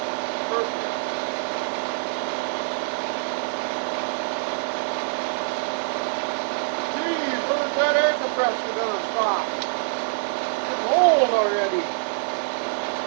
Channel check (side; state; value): left; silent; 62 dB below the other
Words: perfect. Geez, when's that air compressor gonna stop? It's old already.